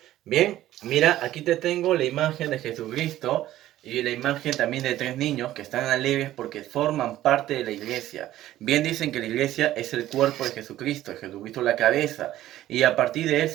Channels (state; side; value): quieter; left; 14.0 dB